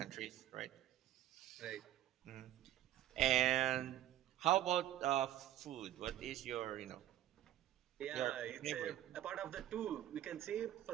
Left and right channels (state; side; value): quieter; left; 12.5 dB